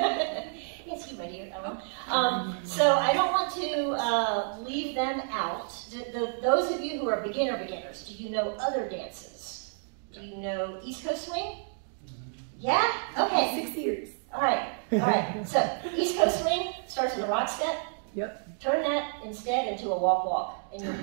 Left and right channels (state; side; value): silent; left; 58 dB below the other